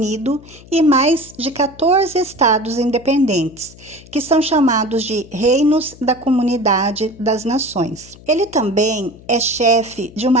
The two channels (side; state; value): left; noise; hum, 21 dB below the sound